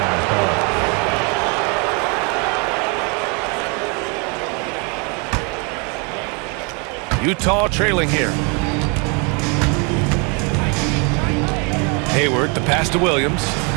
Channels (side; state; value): left; quieter; 33.1 dB